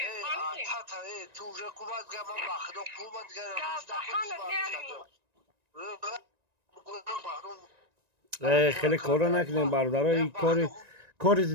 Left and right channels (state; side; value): late; left; 1.9 ms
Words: تو حکومت گمان بخدا حکومت خیلی کارا نکنیم برادرای کار